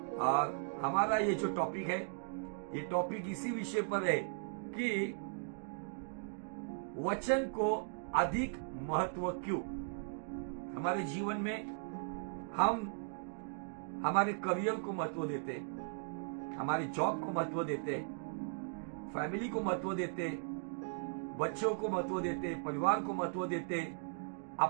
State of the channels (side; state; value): left; silent; digital silence